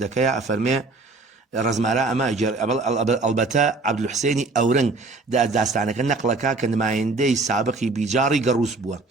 أفرمي رزمارا أما أجر البتا عبد الحسيني أورن داستانك النقلكا كان ما يندي سابقي بجاري قروس بوا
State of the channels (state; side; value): quieter; left; 3.6 dB